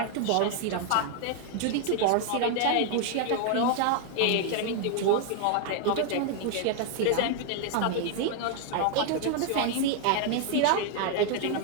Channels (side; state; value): both; different; correlation 0.00